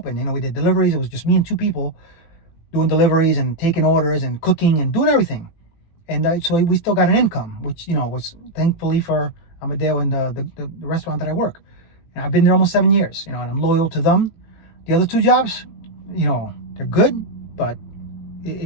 We did deliveries. It was just me and 2 people doing deliveries and taking orders and cooking and doing everything. And so we still got an income, which, was thankfully for Amadeo and the restaurant that I work. And I've been there almost 7 years, and I'm loyal to them. The other 2 jobs, they're good, but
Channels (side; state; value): right; late; 18 ms